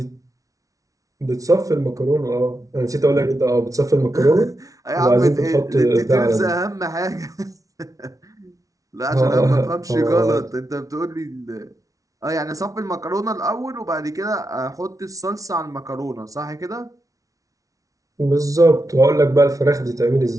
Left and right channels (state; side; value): late; left; 0.17 ms